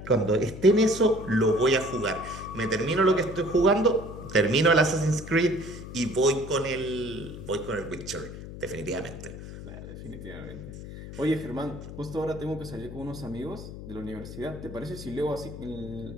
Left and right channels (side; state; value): left; noise; hum, 11 dB below the sound